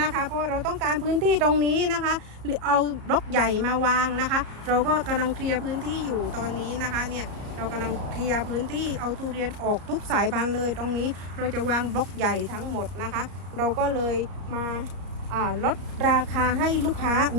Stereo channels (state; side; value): late; left; 33 ms